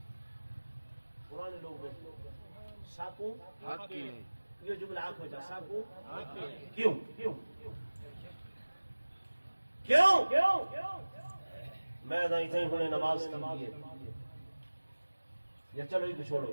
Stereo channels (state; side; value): inverted; both; correlation -1.00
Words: پرانے لوگ میں ساکو حق کی نہیں، یہ جملہ آنکھ ہو جا ساکو کیوں کیوں میں اتنی ہونے نماز کی ہے یا چلو یہ چھوڑو،